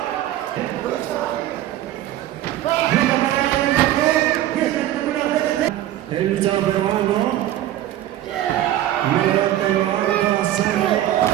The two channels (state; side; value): quieter; left; 13.3 dB